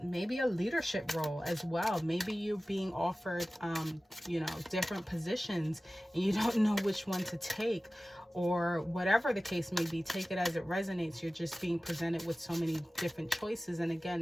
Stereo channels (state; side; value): normal; both; correlation 0.96